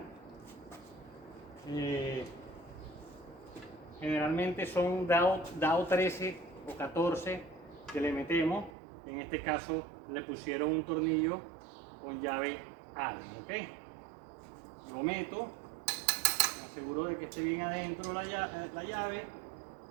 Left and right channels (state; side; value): drops out; left; at 8.7 s